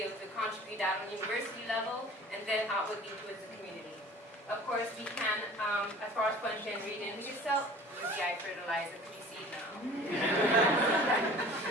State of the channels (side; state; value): both; normal; correlation 0.45